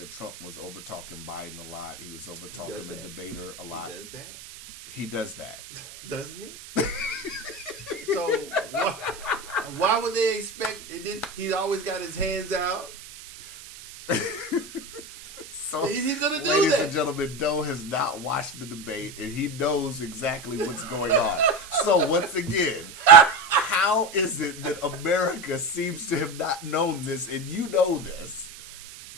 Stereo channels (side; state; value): right; noise; hiss, 15 dB below the sound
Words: Trump was over talking Biden a lot. He was over talking the debater a lot. He does that. He does that. Doesn't he? So why would they expect? And then he's always got his hands out. So he's gonna do ladies that. and gentlemen, Doe has not watched the debate, and he knows exactly what's going on. So once again, how is it that America seems to have not known this, and you know this?